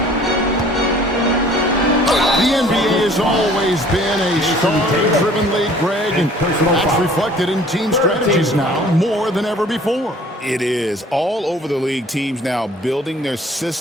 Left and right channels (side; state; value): both; normal; correlation 0.52